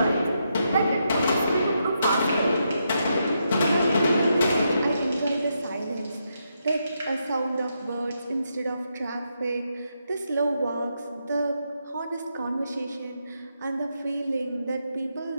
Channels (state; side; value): inverted; both; correlation -0.82